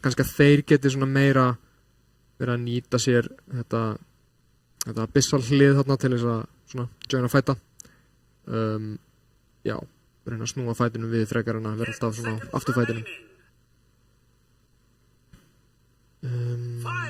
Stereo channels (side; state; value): both; identical; correlation 1.00